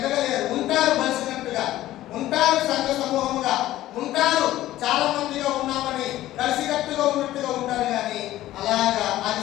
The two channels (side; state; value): right; quieter; 14.8 dB